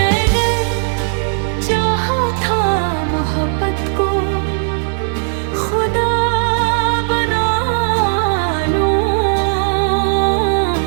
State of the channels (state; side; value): silent; left; digital silence